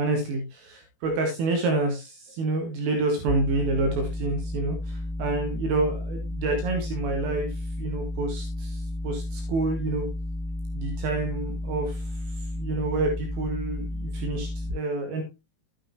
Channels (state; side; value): late; left; 18 ms